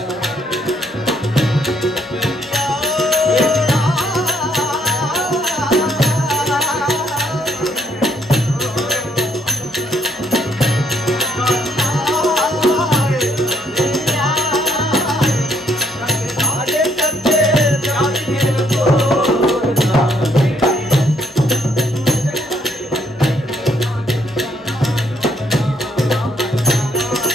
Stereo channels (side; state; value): both; normal; correlation 0.69